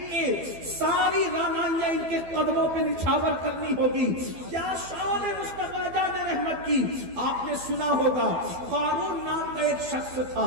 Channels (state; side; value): late; left; 12 ms